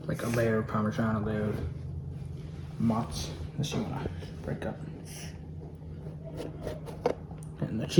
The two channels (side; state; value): both; identical; correlation 1.00